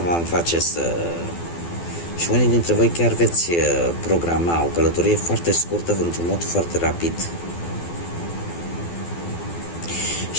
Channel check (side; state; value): right; late; 12 ms